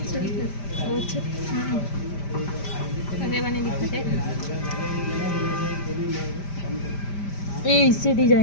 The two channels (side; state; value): right; late; 5.1 ms